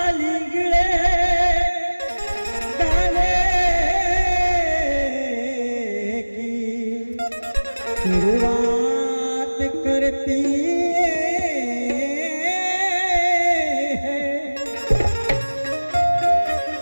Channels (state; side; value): inverted; both; correlation -1.00